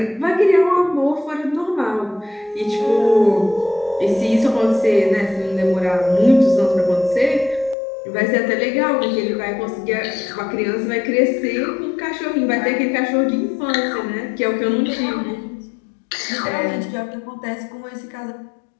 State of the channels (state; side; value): drops out; right; at 7.8 s